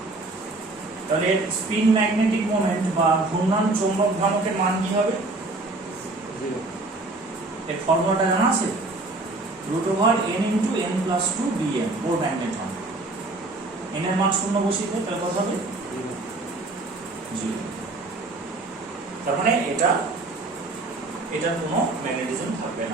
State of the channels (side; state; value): left; quieter; 3.1 dB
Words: তাহলে স্পিন ম্যাগনেটিক মোমেন্ট বা ঘূর্ণন চৌম্বক ভ্রামকের মান কি হবে? 0। এর ফর্মুলাটা জানা আছে? √n × n+2 bm Bohr magneton. n এর মান 0 বসিয়ে দেয়, তাহলে কত হবে? 0। তার মানে এটার কোনো ম্যাগনেটিজম থাকবে